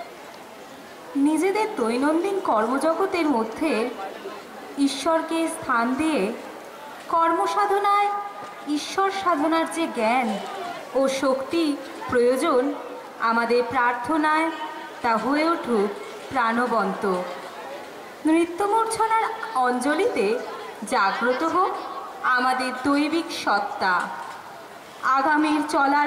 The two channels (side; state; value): both; identical; correlation 1.00